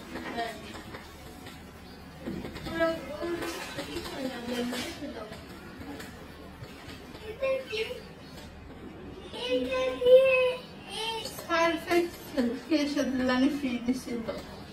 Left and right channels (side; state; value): both; identical; correlation 1.00